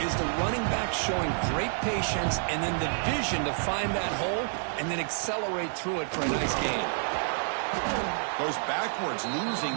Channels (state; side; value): silent; left; digital silence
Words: is the running back showing great patience and then the vision to find that hole and then accelerate through it for a nice gain. Goes backwards,